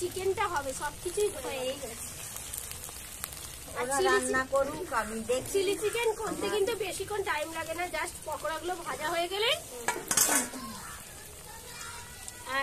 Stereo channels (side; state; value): both; identical; correlation 1.00